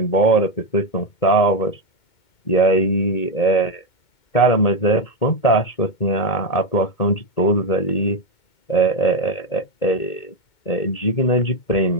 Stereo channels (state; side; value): late; right; 2.2 ms